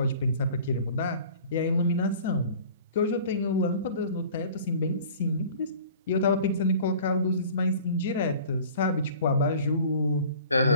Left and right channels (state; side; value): inverted; both; correlation -0.46